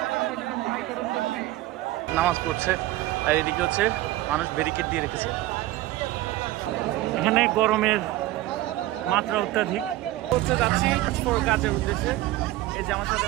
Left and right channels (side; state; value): left; quieter; 16.5 dB